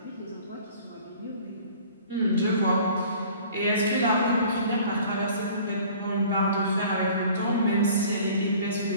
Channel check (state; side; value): inverted; both; correlation -0.49